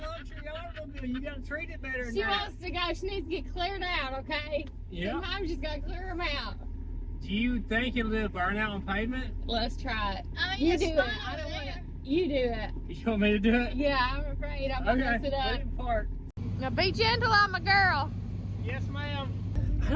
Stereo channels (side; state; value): both; identical; correlation 1.00